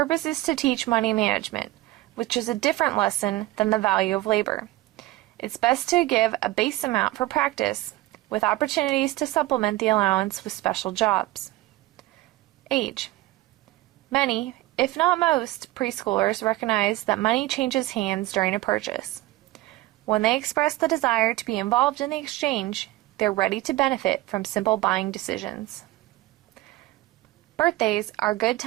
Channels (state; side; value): quieter; left; 17.8 dB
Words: is to teach money management, which is a different lesson than the value of labor. It's best to give a base amount for practice, with opportunities to supplement the allowance with special jobs. Age. Many, if not most, preschoolers recognize that money changes hands during a purchase. When they express the desire to be involved in the exchange, they're ready to benefit from simple buying decisions. Birthdays are a good